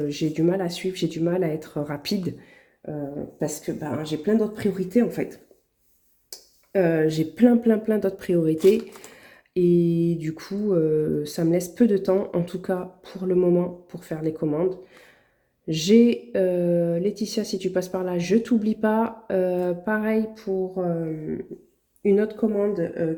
j'ai du mal à suivre, j'ai du mal à être rapide parce que ben, j'ai plein d'autres priorités en fait. J'ai plein d'autres priorités et du coup, ça me laisse peu de temps, en tout cas pour le moment, pour faire les commandes. J'ai Laetitia, si tu passes par là, je t'oublie pas. Pareil pour une autre commande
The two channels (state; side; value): identical; both; correlation 1.00